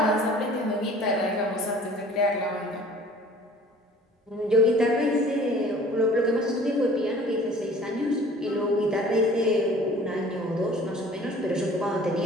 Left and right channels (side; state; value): both; normal; correlation 0.49